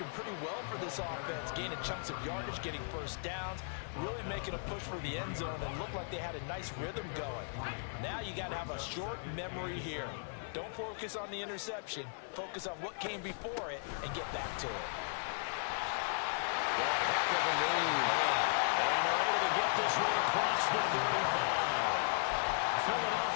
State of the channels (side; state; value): right; silent; 53 dB below the other